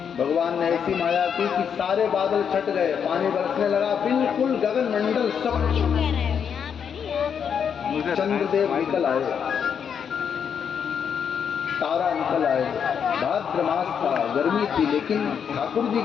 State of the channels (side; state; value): right; quieter; 7.5 dB